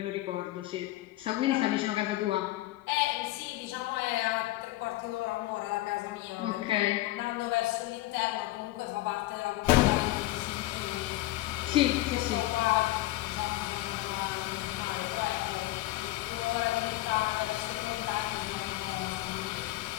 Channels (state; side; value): quieter; right; 17.2 dB